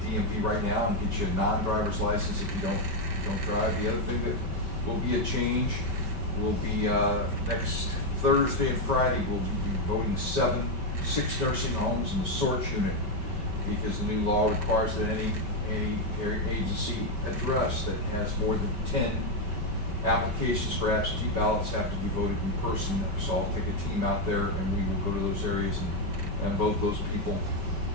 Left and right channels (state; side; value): late; left; 5.2 ms